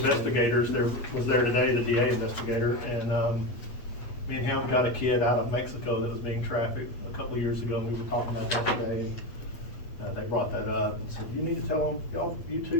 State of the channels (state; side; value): late; right; 8.4 ms